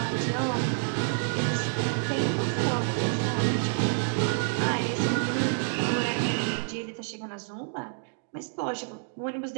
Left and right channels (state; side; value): silent; left; digital silence